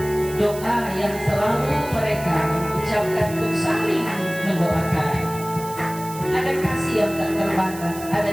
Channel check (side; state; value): right; noise; hiss, 15 dB below the sound